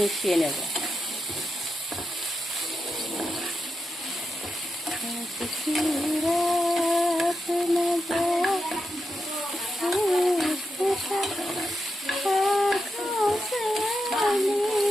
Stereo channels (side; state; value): both; normal; correlation 0.87